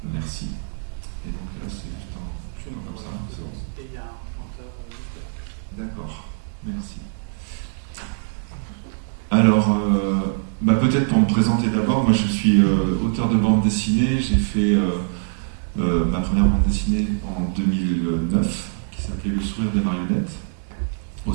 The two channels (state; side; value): silent; left; digital silence